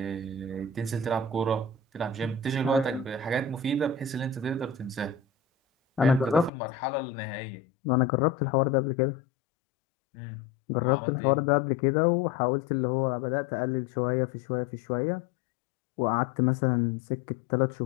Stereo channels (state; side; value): drops out; right; at 6.5 s